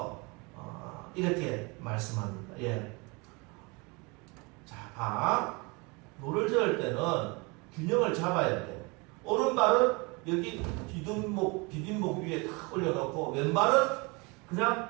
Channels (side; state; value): left; quieter; 28.2 dB